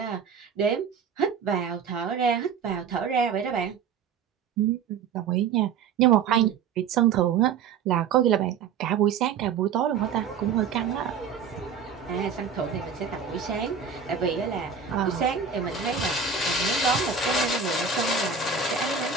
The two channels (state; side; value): quieter; left; 6.4 dB